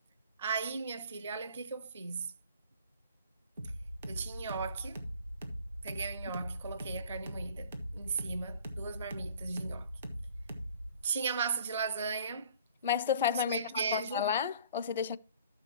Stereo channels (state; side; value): inverted; both; correlation -0.51